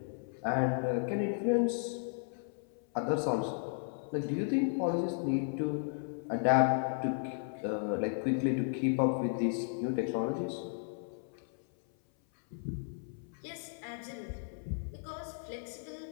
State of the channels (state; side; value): silent; right; 55 dB below the other